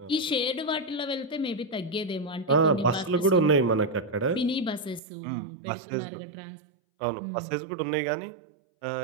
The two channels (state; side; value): drops out; left; at 5.0 s